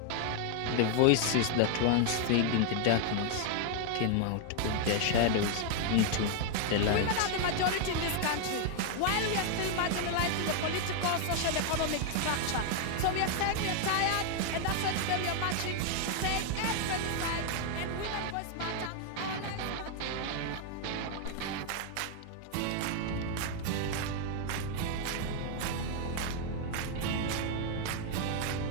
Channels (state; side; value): different; both; correlation 0.00